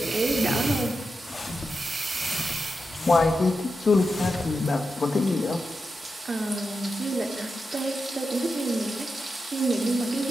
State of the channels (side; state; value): both; normal; correlation 0.89